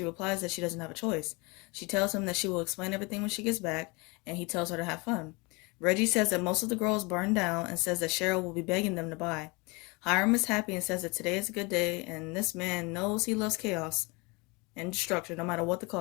replies that she doesn't have a choice. She tells him that she will explain everything when she gets back, and he tells her to have fun. Reggie says that most of the girls burned down and says that Cheryl will be begging them to buy. Hiram is happy and says that today is a good day, and this man knows he loves chaos and destruction no matter what the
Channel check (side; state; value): right; quieter; 27.6 dB